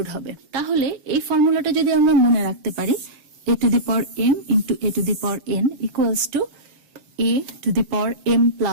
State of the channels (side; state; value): left; late; 7.7 ms